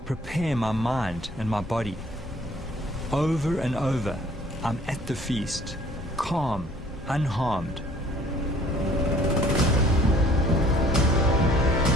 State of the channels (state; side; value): normal; both; correlation 0.56